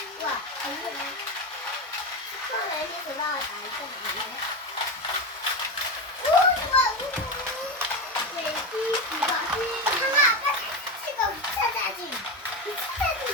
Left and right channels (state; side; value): normal; both; correlation 0.17